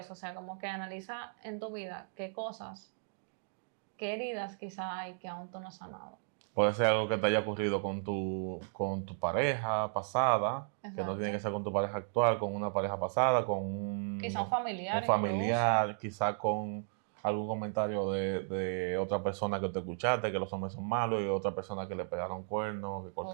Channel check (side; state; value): left; silent; digital silence